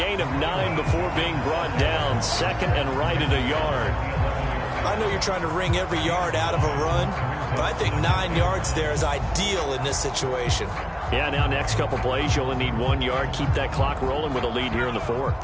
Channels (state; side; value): identical; both; correlation 1.00